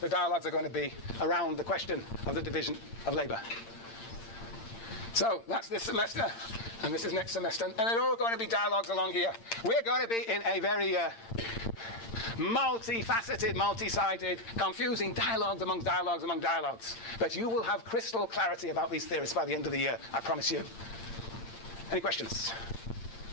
dialogues are going to be around the question of the division of labour. So that's this semester, and this is next semester. And they're all going to be dialogues along here. We're going to be in a very multifaceted, multi-sided, confusing dialogues among dialogues. But you will have crystal clarity about these theories by the end of the year, I promise you. Any questions?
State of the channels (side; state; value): right; late; 8.8 ms